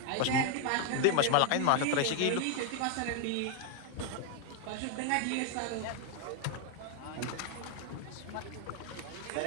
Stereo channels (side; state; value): both; different; correlation 0.00